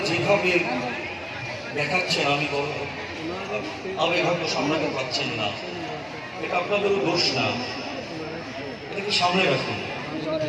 যেভাবে দেখাচ্ছেন, আমি হয়তো সামলাতে পারছেন না, এটা আপনাদেরও দোষ না, এটাকে সামনে রাখুন।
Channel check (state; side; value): identical; both; correlation 1.00